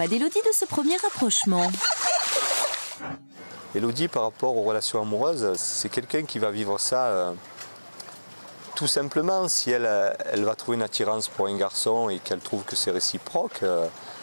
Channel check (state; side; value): inverted; both; correlation -1.00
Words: d'Élodie, de ce premier rapprochement? Élodie, par rapport aux relations amoureuses, c'est quelqu'un qui va vivre ça tout simplement. Si elle va trouver une attirance pour un garçon et qu'elle trouve que c'est réciproque,